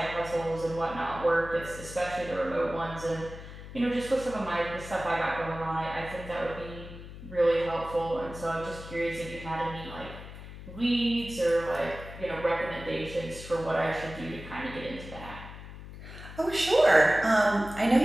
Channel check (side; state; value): left; noise; hum, 13 dB below the sound